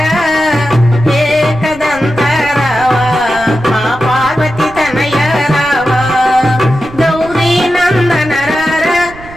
एकदंत रावा मा पार्वती तनय रावा। गौरी नंदन रारा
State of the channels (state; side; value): noise; right; rumble, 17 dB below the sound